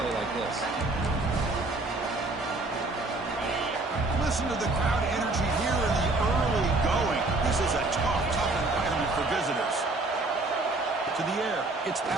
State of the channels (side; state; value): left; quieter; 3.0 dB